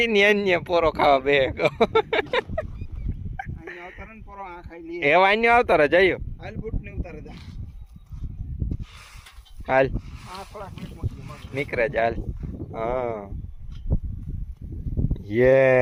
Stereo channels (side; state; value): both; identical; correlation 1.00